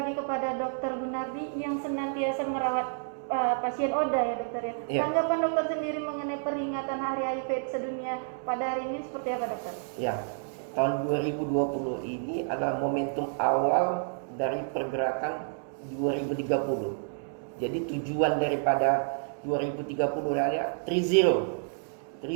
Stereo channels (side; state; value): left; silent; digital silence